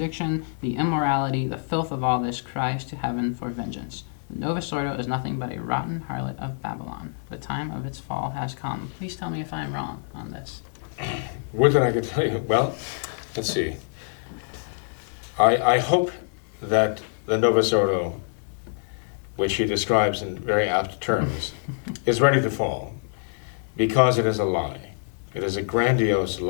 the immorality, the filth of all this cries to heaven for vengeance. The Novus Ordo is nothing but a rotten harlot of Babylon. The time of its fall has come. Please tell me if I am wrong on this. Would that I could tell you? Well, let's see. I hope that the Novus Ordo, which he describes in very apt terms, is ready to fall, because it is a lie. It is a grandiose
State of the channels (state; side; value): silent; right; 61 dB below the other